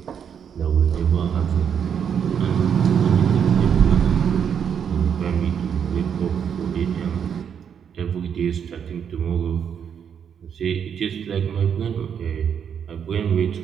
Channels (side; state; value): left; quieter; 7.8 dB